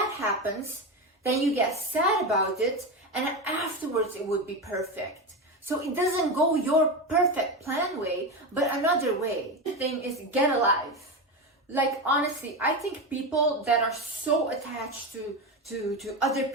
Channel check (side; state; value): both; normal; correlation 0.17